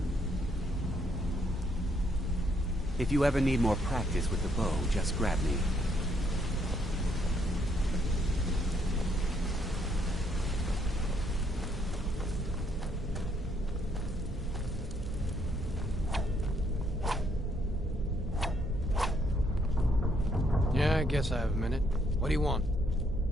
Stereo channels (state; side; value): normal; both; correlation 0.71